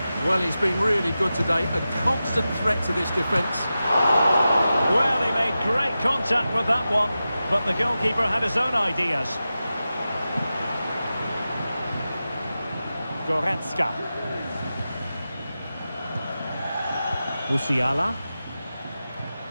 Well, he's been really good today. A constant threat to this defence. Well, he made great contact with that one, but the goalkeeper had his own ideas. Goretzka. Musiala.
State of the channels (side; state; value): both; inverted; correlation -0.93